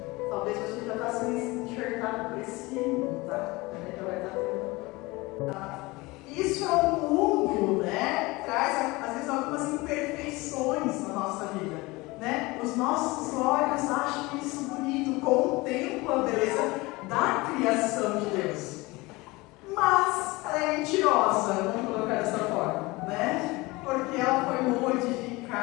Talvez você já está sendo enxertado por esse mundo, tá? Já vai estar tendo. Isso é um mundo, né? Traz, às vezes, algumas imperfeições na nossa vida, né? Os nossos olhos acham isso bonito, contemplam a beleza da criação de Deus. Mas ela é mentirosa, vamos colocar dessa forma, né? Porque ela foi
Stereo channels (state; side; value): quieter; right; 22.6 dB